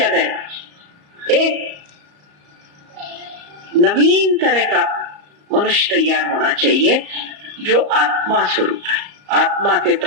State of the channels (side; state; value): left; late; 34 ms